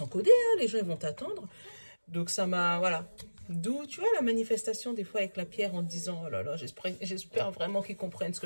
hein, les gens, ils vont t'attendre. Donc ça m'a, voilà. D'où, tu vois, la manifestation des fois avec la pierre en te disant, oh là là, j'espère vraiment qu'ils comprennent ce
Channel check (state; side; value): inverted; both; correlation -1.00